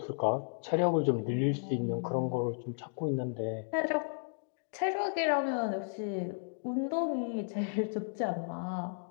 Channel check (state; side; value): silent; right; digital silence